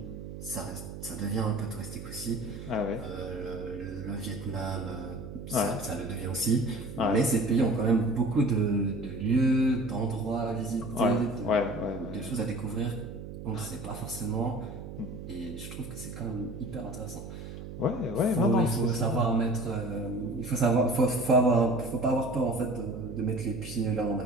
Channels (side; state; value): right; noise; hum, 10 dB below the sound